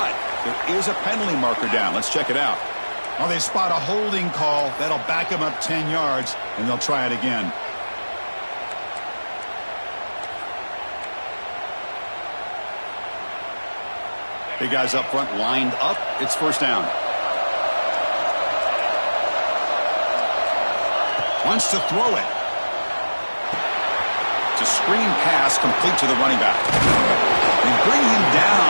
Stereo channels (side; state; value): both; inverted; correlation -1.00